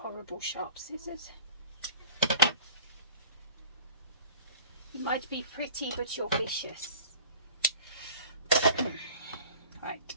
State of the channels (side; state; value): both; inverted; correlation -0.44